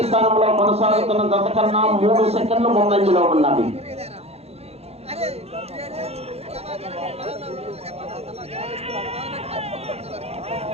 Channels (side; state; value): left; late; 0.30 ms